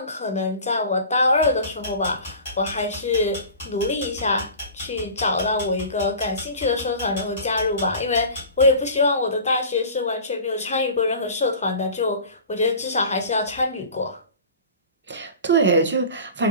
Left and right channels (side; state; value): both; inverted; correlation -0.39